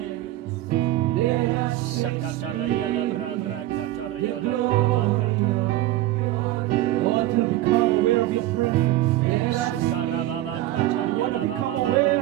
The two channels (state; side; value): quieter; left; 15.2 dB